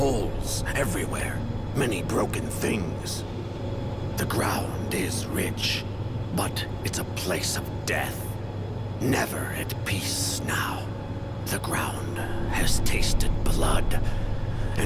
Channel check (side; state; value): both; identical; correlation 1.00